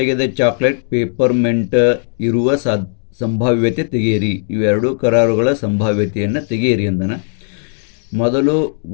ಚಾಕ್ಲೇಟ್ ಪೇಪರ್ಮೆಂಟ್ ಇರುವ ಸಂಭಾವ್ಯತೆ ತೆಗೆಯಿರಿ. ಇವೆರಡು ಕರಾರುಗಳ ಸಂಭಾವ್ಯತೆಯನ್ನು ತೆಗೆಯಿರಿ ಅಂದನ. ಮೊದಲು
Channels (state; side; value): silent; right; digital silence